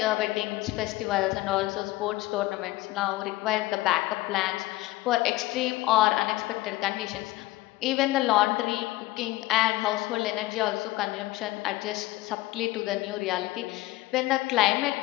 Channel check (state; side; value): quieter; right; 18.4 dB